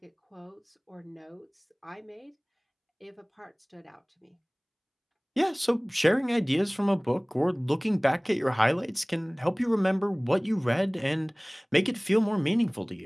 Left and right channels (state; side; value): identical; both; correlation 1.00